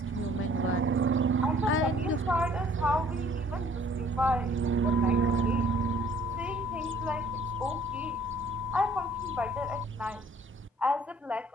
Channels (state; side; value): normal; both; correlation 0.58